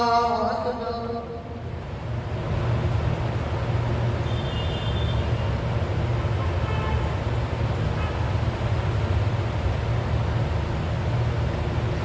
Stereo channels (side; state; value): both; identical; correlation 1.00